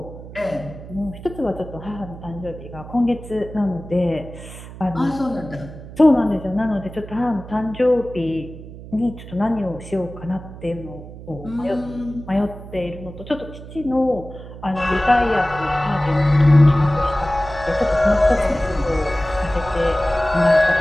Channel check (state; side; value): noise; right; hum, 14 dB below the sound